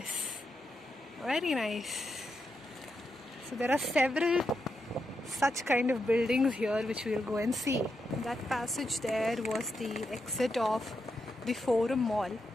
Very nice. So there are several such kind of buildings here which we'll go and see. That passage there was the exit of the Forum Mall,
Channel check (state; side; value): normal; both; correlation 0.84